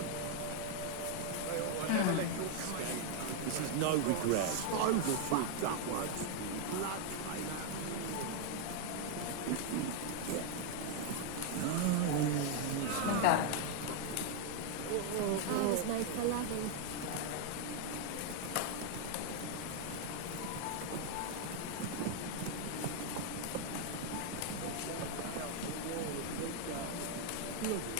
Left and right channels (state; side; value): different; both; correlation 0.00